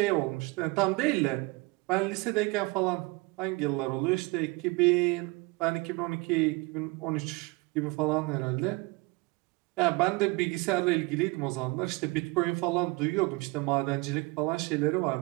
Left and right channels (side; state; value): left; quieter; 25.1 dB